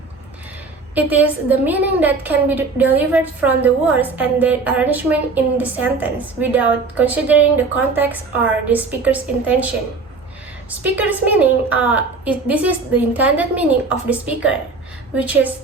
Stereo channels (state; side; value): quieter; left; 4.1 dB